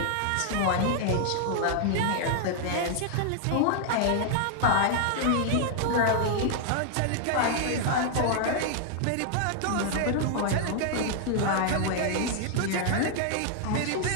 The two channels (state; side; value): different; both; correlation 0.00